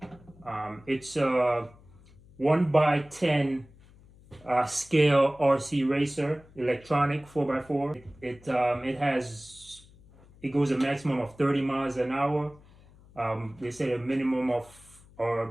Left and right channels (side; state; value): left; noise; hum, 25 dB below the sound